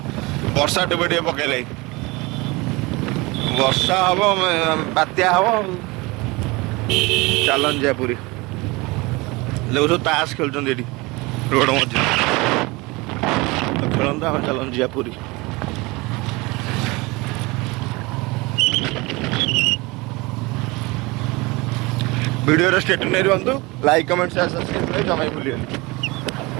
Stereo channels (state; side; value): quieter; left; 24.2 dB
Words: वर्षा टे टे पकड़ वर्षा हम बात्या हम चलन जा पूरी लोग सब ताश खेल रोड मझे खेलता हम चलन जा पूरी वीडियो स्टेट नहीं रुहतु लाइक कमेंट शेयर सब्सक्राइब जमा भूलिए